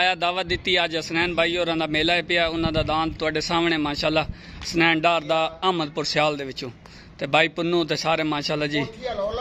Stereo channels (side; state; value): both; identical; correlation 1.00